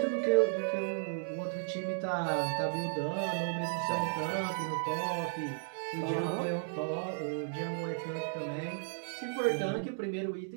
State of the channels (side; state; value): left; silent; digital silence